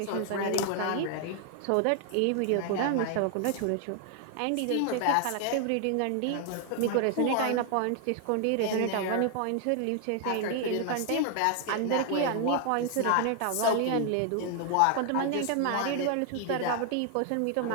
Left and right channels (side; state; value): both; different; correlation 0.00